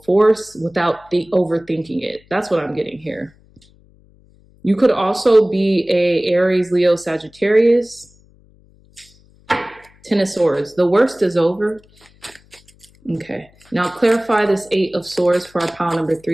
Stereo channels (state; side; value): noise; left; hum, 29 dB below the sound